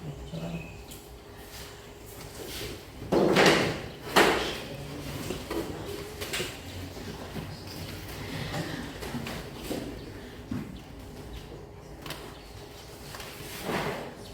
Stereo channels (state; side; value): identical; both; correlation 1.00